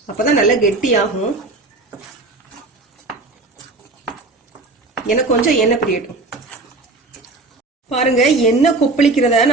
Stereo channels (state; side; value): quieter; left; 3.3 dB